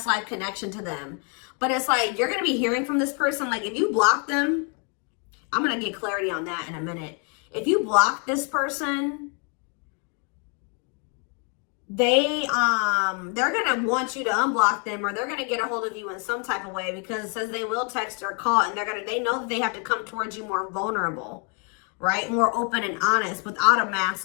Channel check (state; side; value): quieter; right; 38.0 dB